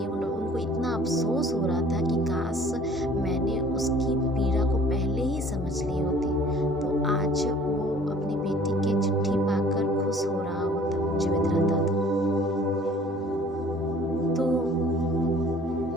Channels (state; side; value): normal; both; correlation 0.52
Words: उनको इतना अफसोस हो रहा था कि काश मैंने उसकी पीड़ा को पहले ही समझ ली होती, तो आज वो अपनी बेटी की चिट्ठी पाकर खुश हो रहा होता, जीवित रहता था। तो